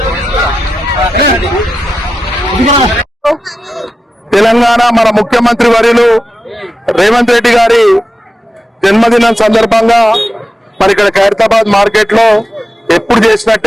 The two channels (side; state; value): both; normal; correlation 0.91